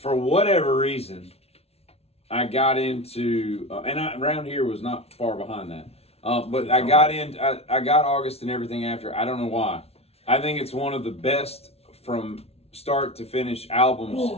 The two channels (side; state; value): right; late; 0.30 ms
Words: whatever reason, I got into, around here was not far behind that. But I got August and everything after. I don't know why. I think it's one of the best from start to finish albums